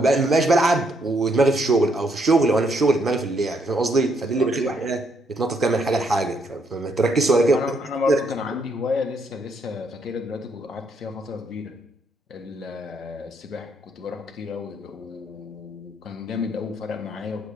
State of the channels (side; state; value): both; normal; correlation 0.73